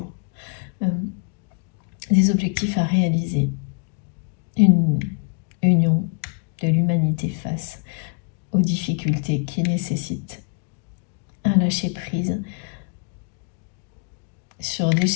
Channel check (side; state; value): right; quieter; 35.7 dB